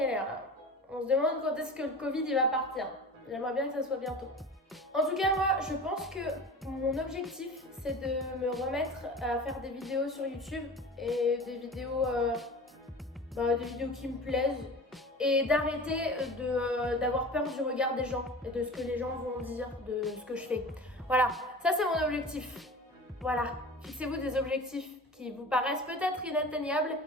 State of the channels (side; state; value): both; normal; correlation 0.36